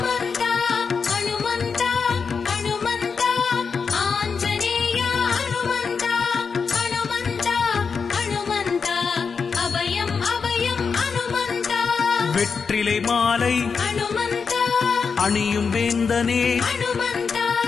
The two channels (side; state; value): right; quieter; 5.5 dB